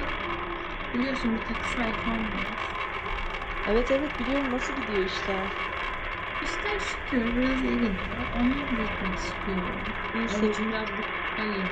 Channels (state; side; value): identical; both; correlation 1.00